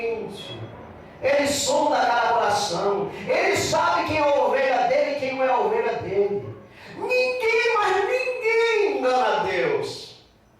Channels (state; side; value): identical; both; correlation 1.00